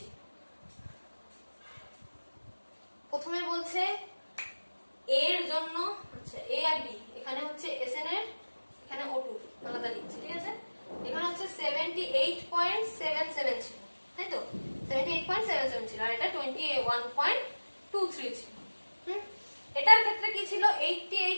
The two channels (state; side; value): inverted; both; correlation -1.00